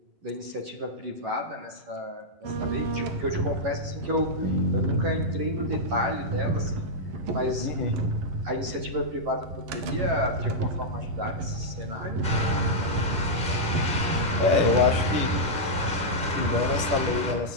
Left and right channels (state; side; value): late; left; 11 ms